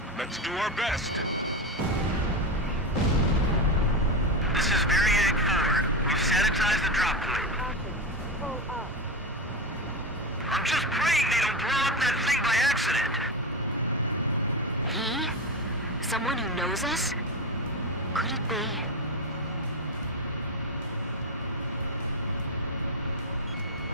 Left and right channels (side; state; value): both; normal; correlation 0.17